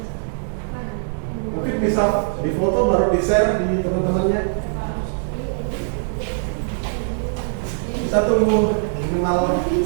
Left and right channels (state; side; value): silent; left; digital silence